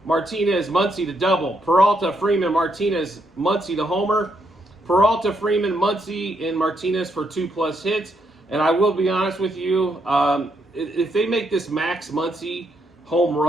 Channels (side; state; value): both; normal; correlation 0.77